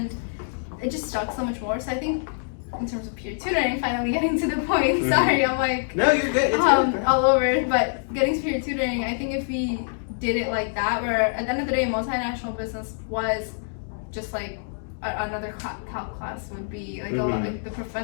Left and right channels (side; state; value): right; silent; digital silence